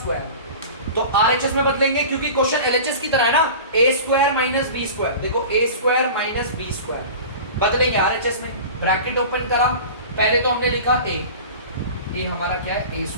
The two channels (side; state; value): both; inverted; correlation -0.36